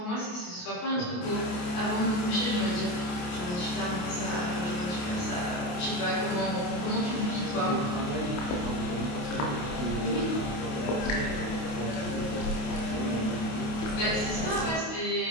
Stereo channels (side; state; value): right; late; 28 ms